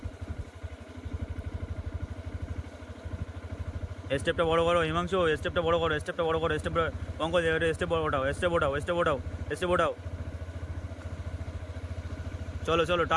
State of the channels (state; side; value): identical; both; correlation 1.00